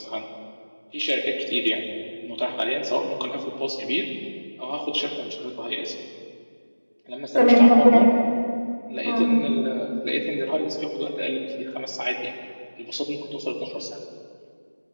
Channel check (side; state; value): both; inverted; correlation -1.00